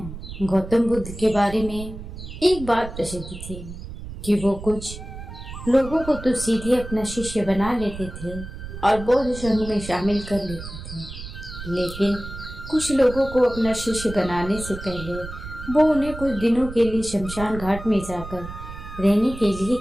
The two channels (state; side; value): noise; right; rumble, 11 dB below the sound